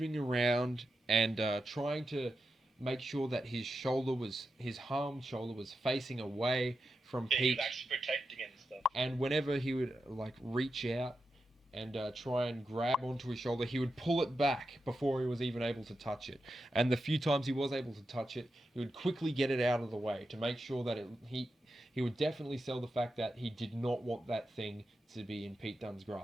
around and trying to make sure that his harmed shoulder was facing away from Yeah, he Pete. was actually protecting it and stuff. And whenever he would like reach out and try and grab onto his shoulder, he would pull it back before he was even able to touch it. And the few times he was able to touch it, he would quickly get it out of the way to make sure that he would definitely sell the fact that he did not want that thing to be in Pete Dunne's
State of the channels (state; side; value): normal; both; correlation 0.88